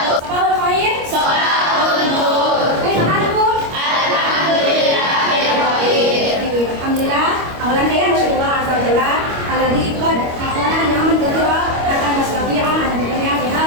Sabahul khair. Sabahul nur. Alhamdulillah. Alhamdulillah. Awalan saya bersyukur azza wa jalla alladzi qad aqana ni'aman katsira akan mustafi'a an dunya fi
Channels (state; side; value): late; left; 25 ms